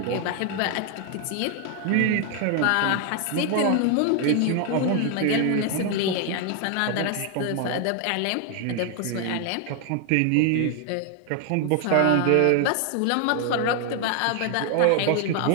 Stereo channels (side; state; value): both; different; correlation 0.00